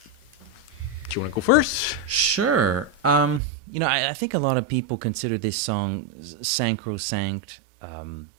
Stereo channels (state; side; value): drops out; left; at 3.4 s